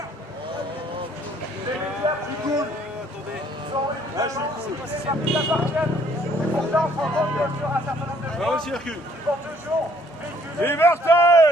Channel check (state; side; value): normal; both; correlation 0.62